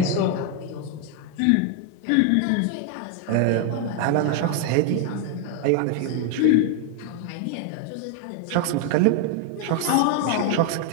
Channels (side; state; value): both; different; correlation 0.01